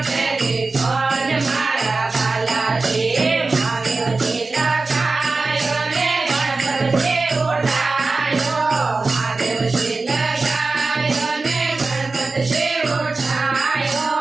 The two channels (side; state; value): left; quieter; 3.7 dB